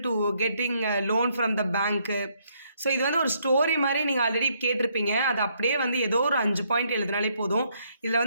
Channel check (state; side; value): inverted; both; correlation -0.71